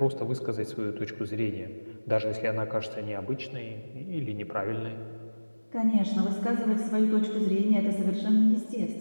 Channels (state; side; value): inverted; both; correlation -1.00